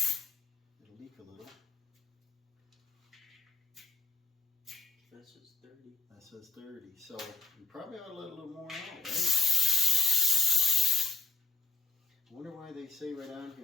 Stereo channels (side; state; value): right; quieter; 4.3 dB